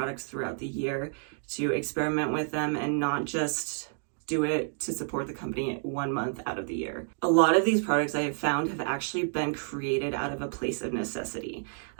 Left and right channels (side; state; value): left; silent; 58 dB below the other